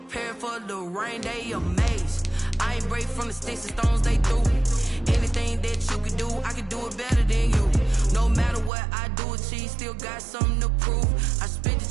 for the rain, they amazed. I ain't break from the sticks and stones they threw. Anything that you can do, I can do it better than you. No matter what I do, achieve, still got something to prove. I spent the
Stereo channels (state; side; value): drops out; left; at 8.7 s